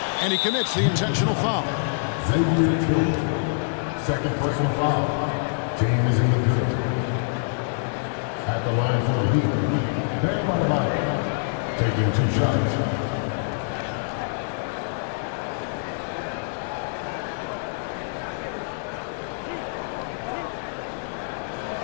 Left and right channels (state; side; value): silent; right; 61 dB below the other